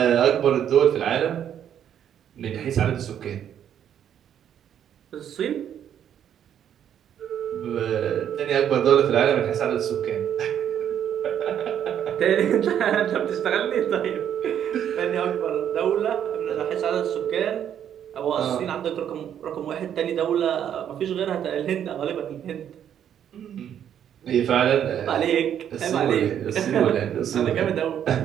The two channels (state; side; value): quieter; left; 9.6 dB